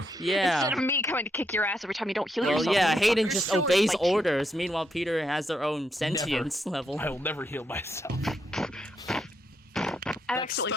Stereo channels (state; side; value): normal; both; correlation 0.79